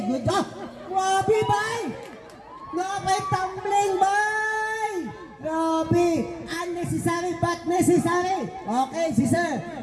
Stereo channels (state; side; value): identical; both; correlation 1.00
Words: good job. Grabe, bay. Grabe, tumbling, bay! Grabe! Unnecessary but necessary! Okay, si Sir.